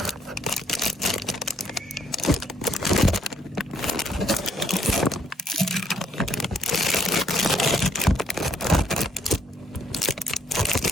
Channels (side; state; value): both; normal; correlation 0.70